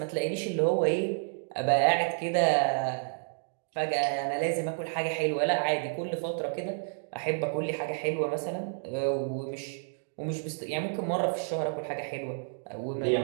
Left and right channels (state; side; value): silent; left; digital silence